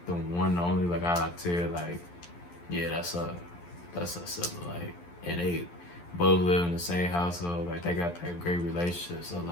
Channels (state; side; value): late; right; 11 ms